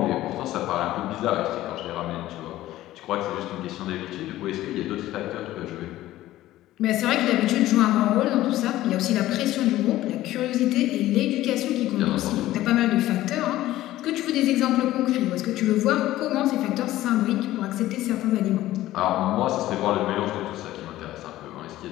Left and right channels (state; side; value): quieter; right; 15.2 dB